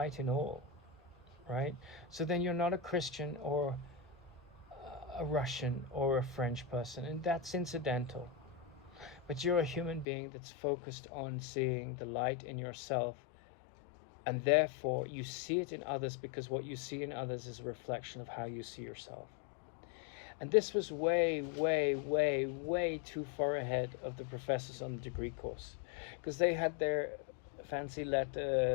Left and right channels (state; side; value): drops out; right; at 10.1 s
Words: in all, right? So then you're not a Christian or a Russian or a French person, and that's incidental. But you're a human being that's focused on seeing the light in yourself, and therefore you see it in others, because what you see in others is a reflection of how you see yourself. And this was way, way, way, way too far ahead of the professors on the degree course, because they had their fancy